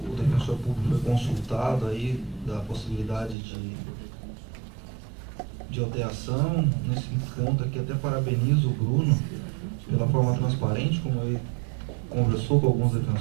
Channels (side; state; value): left; drops out; at 3.4 s